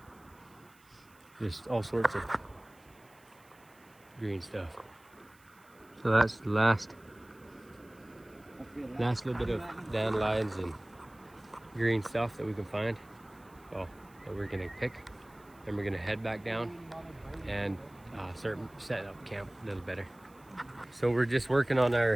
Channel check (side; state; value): right; noise; hiss, 29 dB below the sound